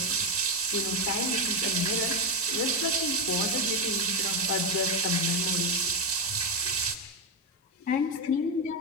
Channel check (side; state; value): both; normal; correlation 0.10